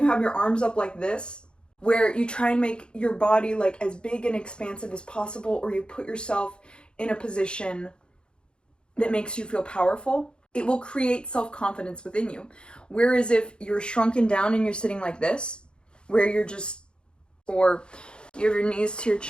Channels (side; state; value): right; late; 0.052 ms